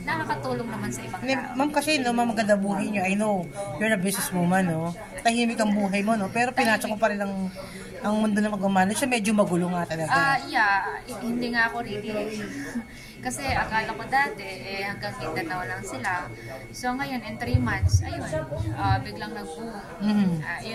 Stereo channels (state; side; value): identical; both; correlation 1.00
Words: nakakatulong naman sa ibang tao. Ma'am, kasi maganda buhay niyo. I know, you're a businesswoman, no? Tahimik ang buhay mo, no? Pero pinasok ko pa rin ang mundo na mag-manage. Medyo magulo nga talaga. Hindi nga ako really. Kasi akala ko dati, hanggang Mindanao lang sila. So ngayon, in 3 months, ayun, biglang nag-boom.